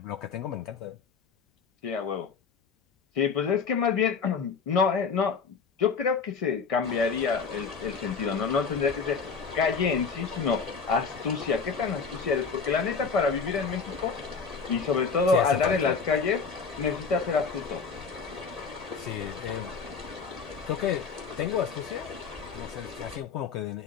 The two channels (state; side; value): quieter; right; 5.4 dB